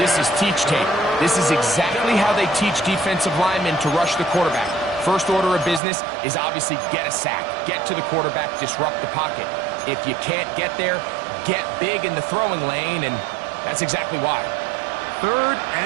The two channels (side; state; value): left; drops out; at 5.8 s